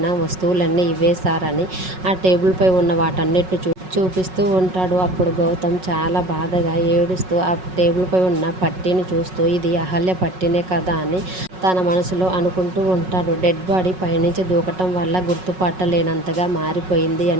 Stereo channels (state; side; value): late; left; 5.4 ms